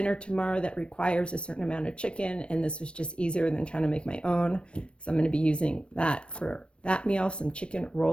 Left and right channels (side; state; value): right; late; 0.058 ms